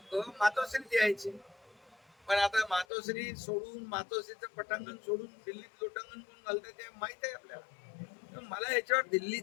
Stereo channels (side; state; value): right; drops out; at 2.9 s